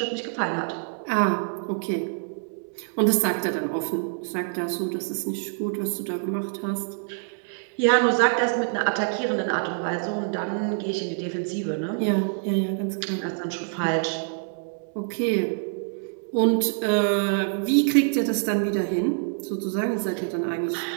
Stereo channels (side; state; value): left; silent; 61 dB below the other